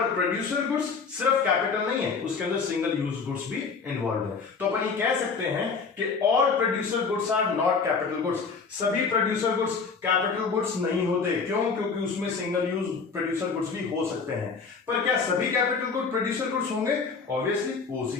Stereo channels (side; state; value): right; quieter; 5.1 dB